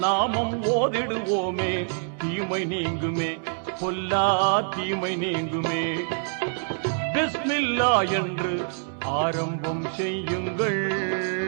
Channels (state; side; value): silent; left; 61 dB below the other